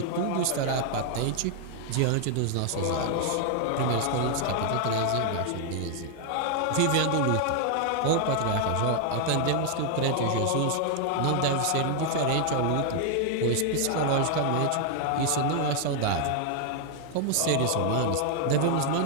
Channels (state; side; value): different; both; correlation 0.00